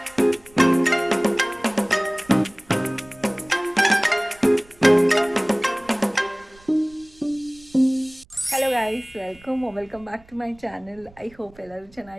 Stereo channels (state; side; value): noise; right; rumble, 27 dB below the sound